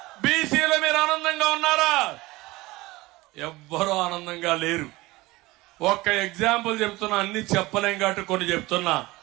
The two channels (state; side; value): quieter; left; 20.4 dB